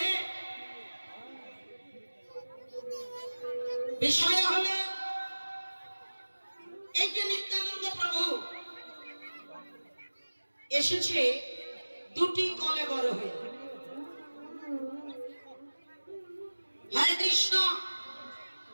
বিষয় হলো এই যে নিত্যানন্দ প্রভু এসেছে দুটি কলেবর হয়ে। হরে কৃষ্ণ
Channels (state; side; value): inverted; both; correlation -1.00